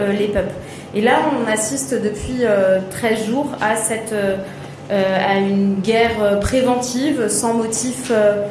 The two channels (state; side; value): identical; both; correlation 1.00